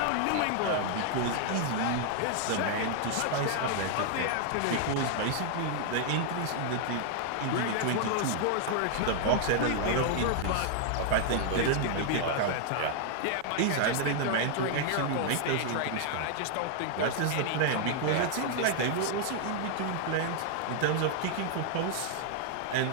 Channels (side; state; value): both; different; correlation -0.01